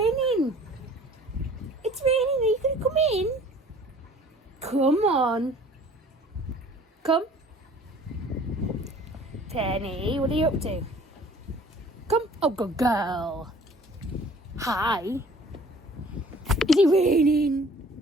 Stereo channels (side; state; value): both; normal; correlation 0.51